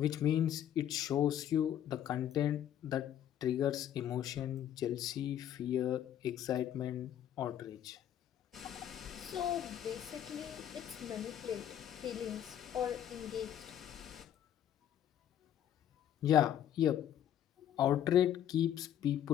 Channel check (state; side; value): quieter; right; 10.6 dB